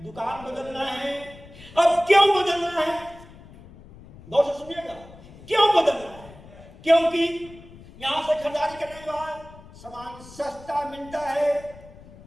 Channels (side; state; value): left; noise; rumble, 20 dB below the sound